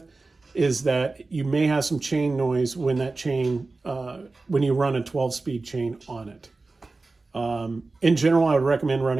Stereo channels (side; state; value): left; quieter; 3.6 dB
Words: is that you may have some chain noise when that chain, when you run a 12-speed chain on it. In general, I would recommend